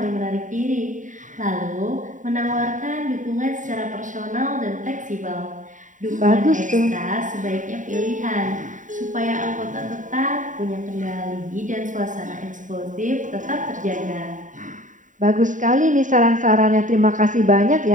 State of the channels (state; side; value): late; left; 0.37 ms